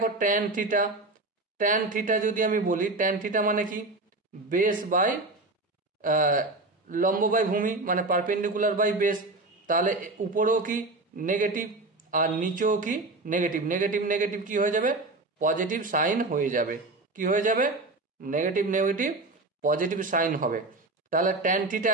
ট্যান থিটা, ট্যান থিটা যদি আমি বলি, ট্যান থিটা মানে কি, বেস বাই লম্ব বাই ভূমি, মানে পারপেন্ডিকুলার বাই বেস। তাহলে উপরেও কি নেগেটিভ আর নিচেও কি নেগেটিভ, নেগেটিভ নেগেটিভ কি হয়ে যাবে, পজিটিভ সাইন হয়ে যাবে। কি হয়ে যাবে, নেগেটিভ নেগেটিভ পজিটিভ সাইন হবে। তাহলে ট্যান থিটা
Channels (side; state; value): left; quieter; 3.1 dB